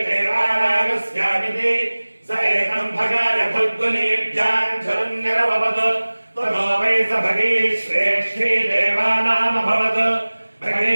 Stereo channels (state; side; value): inverted; both; correlation -1.00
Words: देवानागस्यामिति स एकं भगाय फल्गुनीभ्याञ्जरुन्निरववत् ततो वै स भगे श्रेष्ठे देवानामभवत् भगे